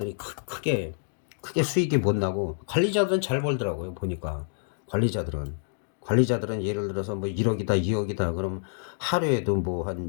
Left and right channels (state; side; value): silent; right; digital silence